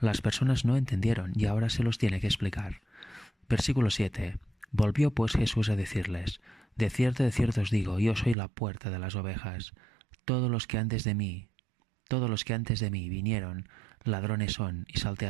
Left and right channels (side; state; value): left; drops out; at 8.3 s